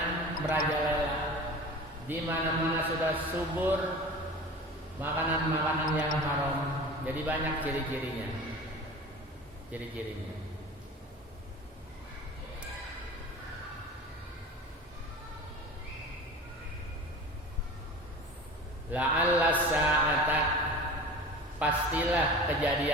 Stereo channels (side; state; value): both; normal; correlation 0.36